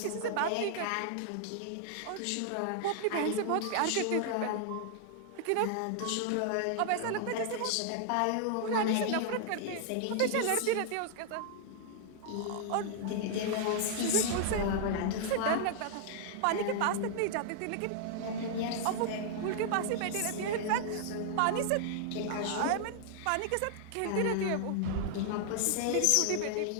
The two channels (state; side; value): different; both; correlation -0.01